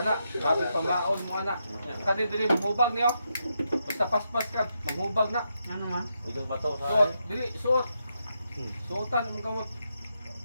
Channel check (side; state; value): both; inverted; correlation -0.83